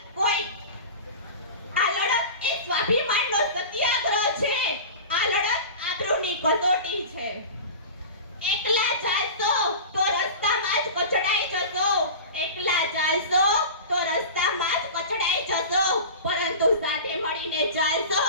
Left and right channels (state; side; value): inverted; both; correlation -0.33